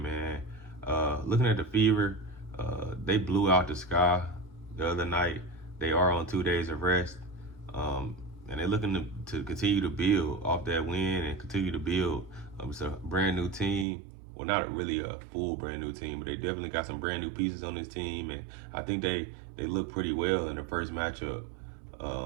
man. Looking at the Fever, they blew out the Sky the other night. They are on 2 days of rest, and they're looking to continue to build off that win and continue to build. It's a brand new team. Well, not really a full brand new team, but they definitely got some brand new pieces on this team, and I think they look pretty well in the first matchup.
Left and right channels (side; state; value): left; drops out; at 13.9 s